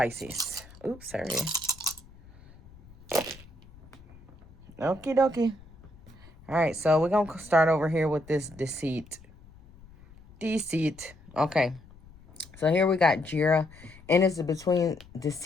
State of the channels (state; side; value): noise; left; rumble, 23 dB below the sound